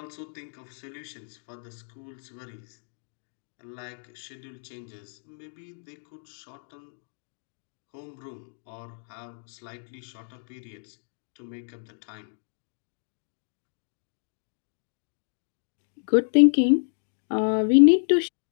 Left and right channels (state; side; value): silent; right; digital silence